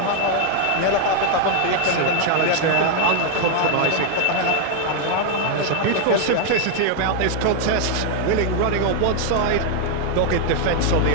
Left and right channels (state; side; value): different; both; correlation 0.00